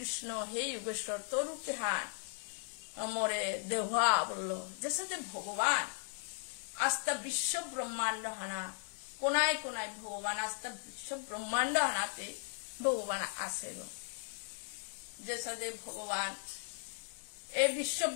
হে যোগেশ্বর তোর রূপে হান মরে দেহা বলল যে সাথে ভগবান আস্থা বিশ্ব ব্রহ্মাণ্ড হানা কোনায় কোনায় ভগবান আস্থা বিশ্ব ব্রহ্মাণ্ড হানাতে ভগবান আছে গো যে সাথে ভগবান এ বিশ্ব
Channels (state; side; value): silent; right; digital silence